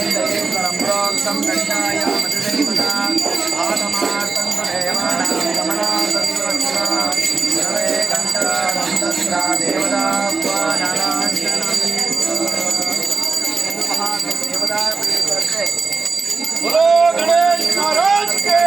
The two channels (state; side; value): quieter; left; 4.4 dB